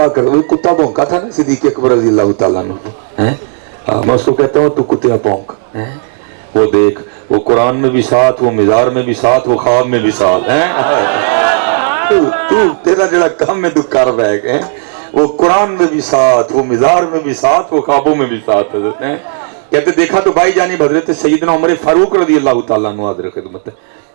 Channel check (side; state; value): left; silent; digital silence